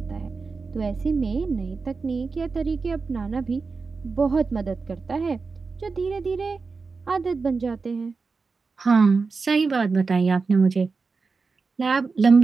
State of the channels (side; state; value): left; quieter; 4.5 dB